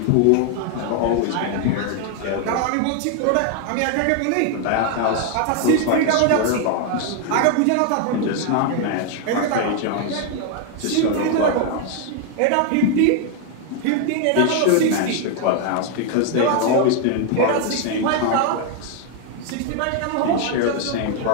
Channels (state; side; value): different; both; correlation 0.00